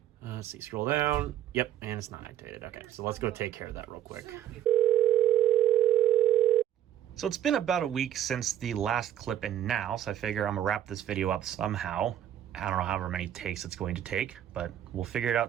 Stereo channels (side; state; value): left; quieter; 11.5 dB